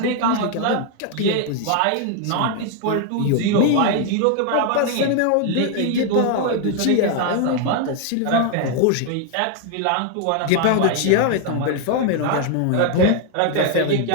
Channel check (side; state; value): both; different; correlation 0.00